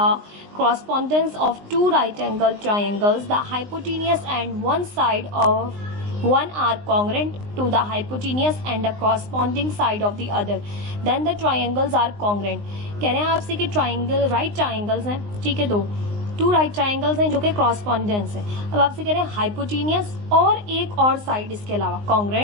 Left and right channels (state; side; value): late; left; 19 ms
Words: correspondence of two right angle triangles the hypotenuse and one side of one are congruent to the hypotenuse and the corresponding side of the other, then the triangles are congruent। कह रहे हैं आपसे कि triangle right triangles हैं, ठीक है, to right triangles हैं जो कि कॉरस्पॉन्डेंस है। अब आपसे कह रहे हैं हाइपोटेनियस और एक और साइड इसके अलावा